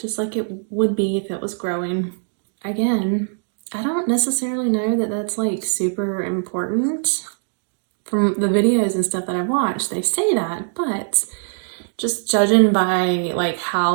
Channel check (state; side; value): silent; left; digital silence